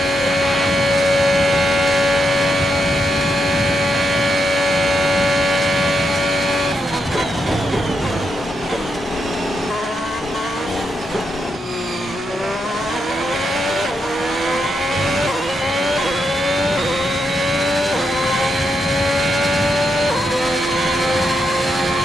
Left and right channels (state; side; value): normal; both; correlation 0.82